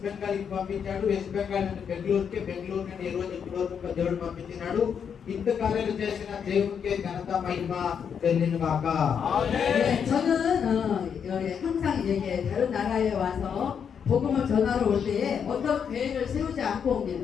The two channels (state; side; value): quieter; right; 7.3 dB